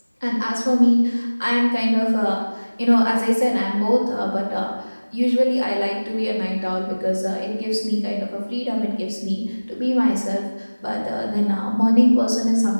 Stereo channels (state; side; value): inverted; both; correlation -1.00